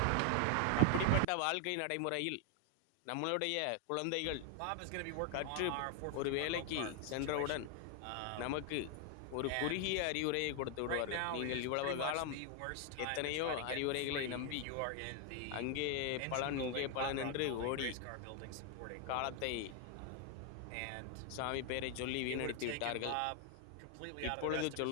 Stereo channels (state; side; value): different; both; correlation 0.00